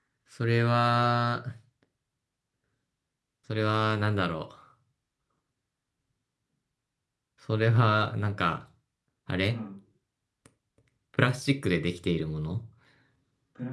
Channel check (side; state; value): both; identical; correlation 1.00